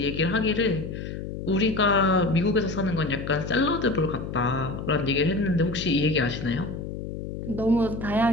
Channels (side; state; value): left; noise; hum, 7 dB below the sound